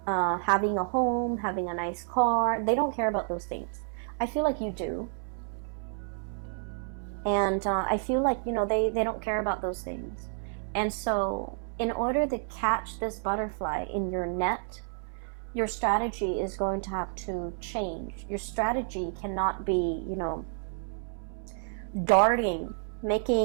having a home, having a nice car. They don't care about those things. I feel like you do. And I feel like, you know, they don't care about those things. And so in order to catch this butterfly in your net, your strategy is going to have to change. Your strategy cannot be, you know, darting,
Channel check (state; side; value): silent; left; 58 dB below the other